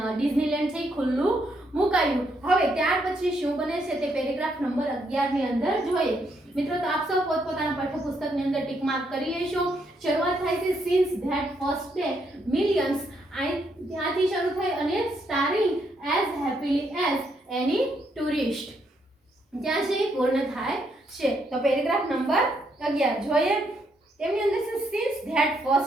ડિઝનીલેન્ડ છે ખુલ્લું મુકાયું। હવે ત્યાર પછી શું બને છે તે પેરેગ્રાફ નંબર 11 ની અંદર જોઈએ। મિત્રો, તો આપ સૌ પોતપોતાના પાઠ્યપુસ્તકની અંદર ટિક માર્ક કરી લેશો। શરૂઆત થાય છે since that first day millions, ત્યાંથી શરૂ થઈ અને સ્ટારિંગ એઝ હેપીલી એઝ એની ટુરિસ્ટ, ત્યાં છે પૂર્ણ થાય છે। તો પેરેગ્રાફ નંબર 11 જોઈએ। તેમની અંદર છે since that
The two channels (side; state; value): both; normal; correlation 0.75